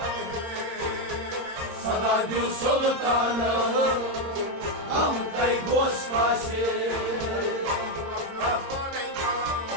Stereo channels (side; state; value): left; late; 26 ms